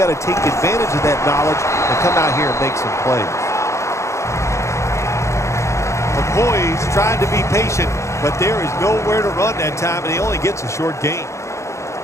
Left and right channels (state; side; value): late; right; 0.14 ms